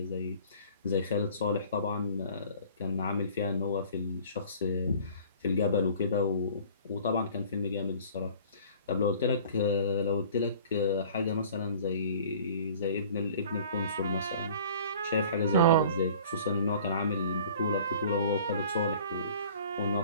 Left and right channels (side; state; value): both; inverted; correlation -0.49